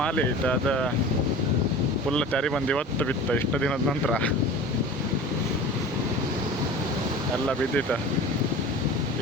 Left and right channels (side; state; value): both; normal; correlation 0.38